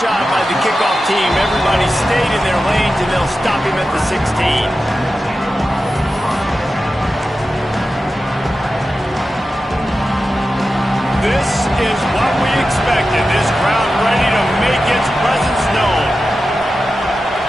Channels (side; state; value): both; normal; correlation 0.92